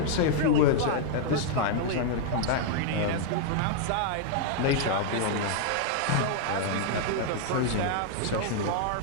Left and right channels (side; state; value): both; different; correlation -0.01